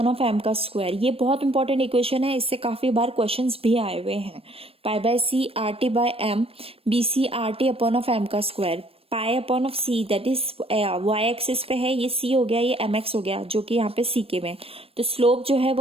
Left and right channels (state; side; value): late; left; 0.28 ms